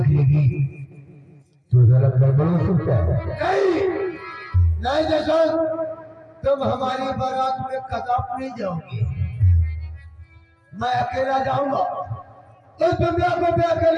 लेगी तो जरा गड़बड़ हो सकता है। नहीं जैसा तुम हमारी बारात में कदाप नहीं जाओगे। मैं अकेला जाऊंगा, इस दुनिया को मैं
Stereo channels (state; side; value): identical; both; correlation 1.00